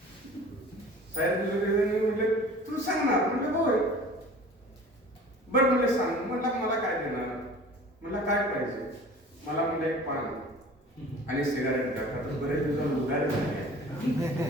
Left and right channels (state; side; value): normal; both; correlation 0.44